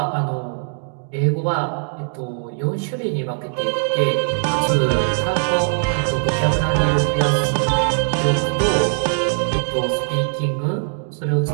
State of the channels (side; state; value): left; silent; 64 dB below the other